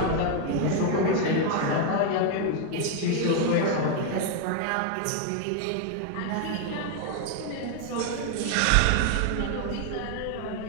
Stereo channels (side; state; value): both; different; correlation 0.00